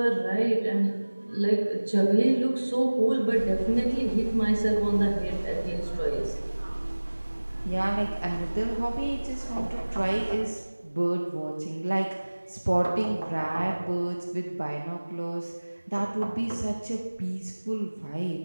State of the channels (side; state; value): both; inverted; correlation -1.00